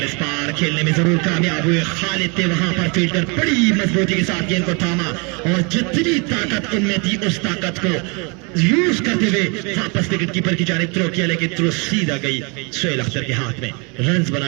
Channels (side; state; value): left; quieter; 32.0 dB